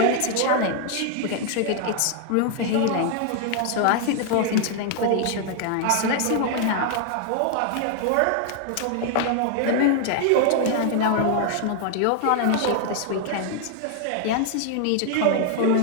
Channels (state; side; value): different; both; correlation 0.00